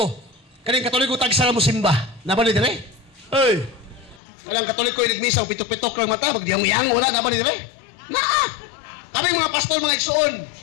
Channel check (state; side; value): drops out; right; at 4.2 s